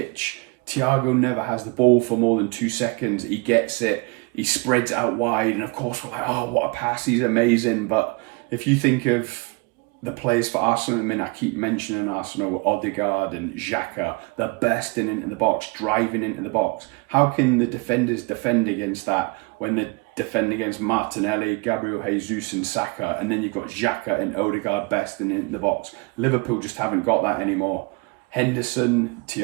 Thiago never has the ball for more than 2 seconds. He gets it, he spreads out wide, and of course we're like, oh, what a pass, he's amazing. But if you think of the players for Arsenal, I mean, I keep mentioning Arsenal, Odegaard and Xhaka, they're bursting into the box, driving into the box. How can the defenders defend against that when they defend against Martinelli, Gabriel Jesus and Saka, and then you've got Xhaka and Odegaard bursting into the box? Liverpool just haven't got that anymore. Henderson,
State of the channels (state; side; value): quieter; left; 28.3 dB